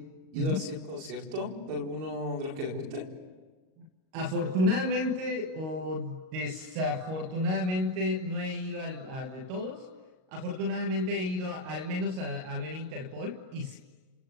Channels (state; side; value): late; left; 38 ms